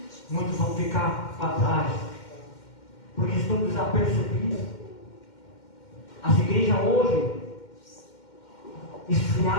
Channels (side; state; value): right; late; 2.1 ms